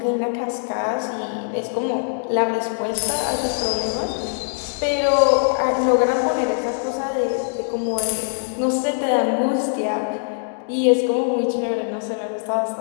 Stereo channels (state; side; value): silent; right; digital silence